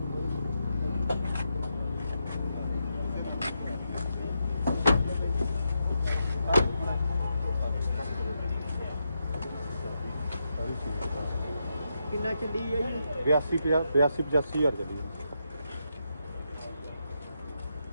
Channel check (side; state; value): both; inverted; correlation -0.83